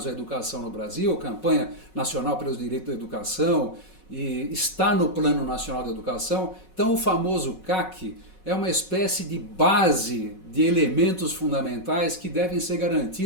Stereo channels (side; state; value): right; late; 5.4 ms